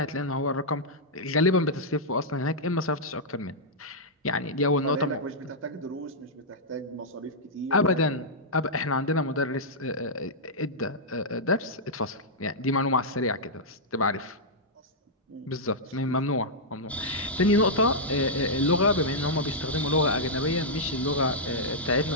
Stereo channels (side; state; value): both; normal; correlation -0.08